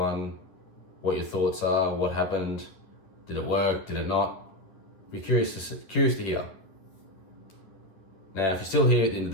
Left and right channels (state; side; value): late; right; 10 ms